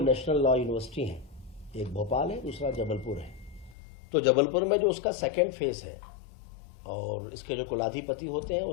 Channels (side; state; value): right; drops out; at 3.8 s